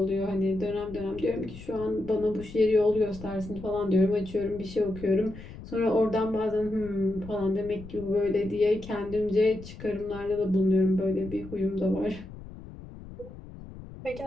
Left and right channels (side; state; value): left; noise; rumble, 15 dB below the sound